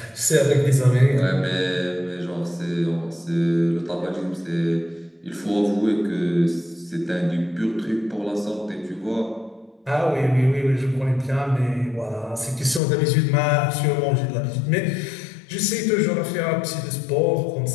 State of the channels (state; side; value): drops out; right; at 12.8 s